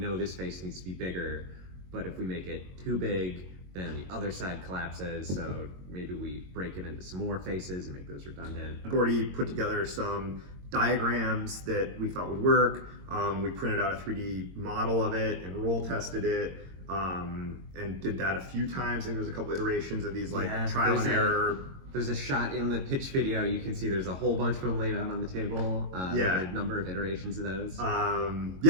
this face needs to be bigger, but if we make it too big, then the other side collapses, so maybe we break it into some more faces and make those redundant. Gordy put together some diagrams that we thought would work. We printed out a 3D model of it and roll tested it, and did that a few times. I think there was a couple iterations of these trial and error. There's a shot in the pitch video, you can see there's a whole bunch of them laid out on the table. A number of iterations of those.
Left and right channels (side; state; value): left; late; 22 ms